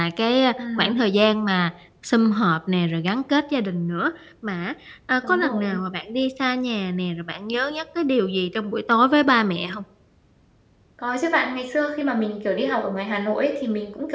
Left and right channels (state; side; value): identical; both; correlation 1.00